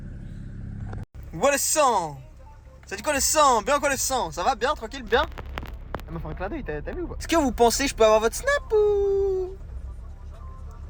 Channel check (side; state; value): both; identical; correlation 1.00